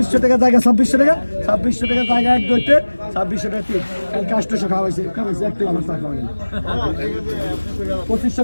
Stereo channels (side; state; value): both; inverted; correlation -1.00